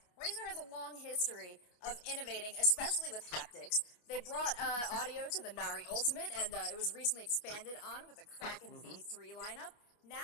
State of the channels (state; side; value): late; right; 29 ms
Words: has a long history of innovating, especially with haptics. They brought audio to the Nari Ultimate, and it was recently expanded on with the Kraken V3 lineup.